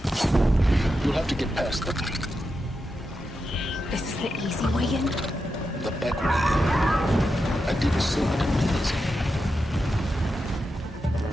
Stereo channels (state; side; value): normal; both; correlation 0.88